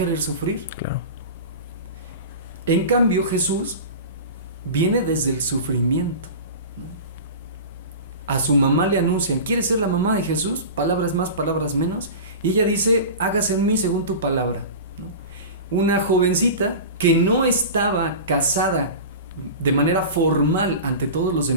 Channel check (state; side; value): inverted; both; correlation -0.32